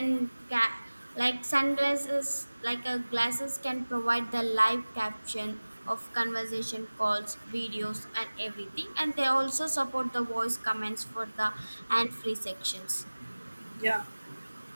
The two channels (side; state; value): both; inverted; correlation -1.00